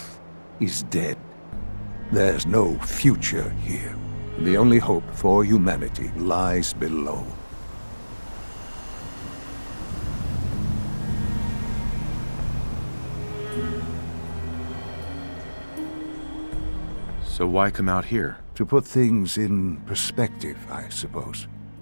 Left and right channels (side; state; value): both; inverted; correlation -1.00